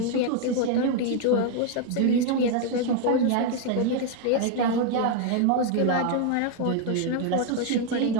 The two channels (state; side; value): different; both; correlation 0.01